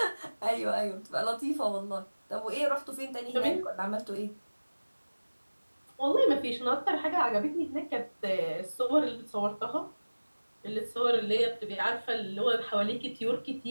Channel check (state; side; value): inverted; both; correlation -1.00